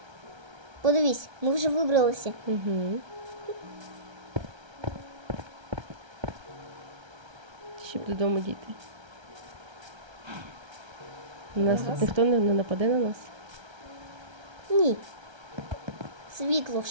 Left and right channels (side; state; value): left; late; 1.3 ms